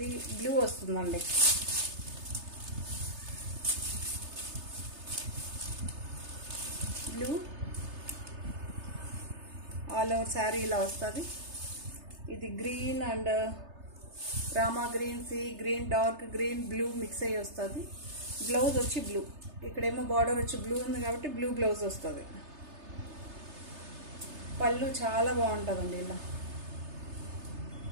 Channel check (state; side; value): late; left; 3.3 ms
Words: బ్లూ వస్తుందండి. బ్లూ ఆల్ ఓవర్ శారీ ఇలా వస్తుంది. ఇది green and Rama green, sea green, dark green, blue mix అయ్యి వస్తుంది. బ్లౌజ్ వచ్చి బ్లూ, ఇక్కడేమో బార్డర్ వచ్చి బ్లూ ఉంది కాబట్టి బ్లూ బ్లౌజ్ వస్తుంది. పళ్ళు చాలా బాగుంటుందండి.